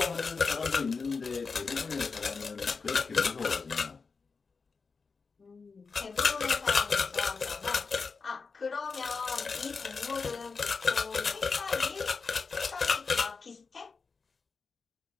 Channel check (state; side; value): quieter; right; 4.8 dB